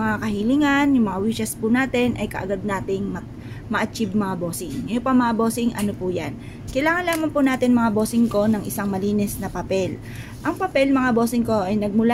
kahilingan, yung mga wishes po natin ay kaagad nating ma-achieve mga bossing. Ngayon pa mga bossing, ano po yan? Kailangan lamang po natin mga bossing ko ng isang malinis na papel. Ang papel mga bossing ko ay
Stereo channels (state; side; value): identical; both; correlation 1.00